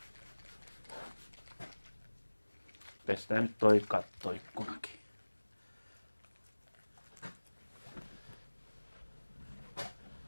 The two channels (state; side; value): inverted; both; correlation -1.00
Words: Pestään nyt toi kattoikkunakin.